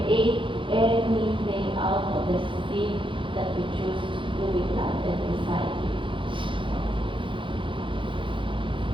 anything out of the seed that you choose to be planted inside you.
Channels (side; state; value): left; late; 0.25 ms